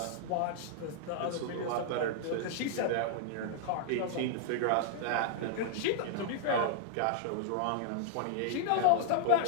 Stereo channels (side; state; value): both; different; correlation -0.01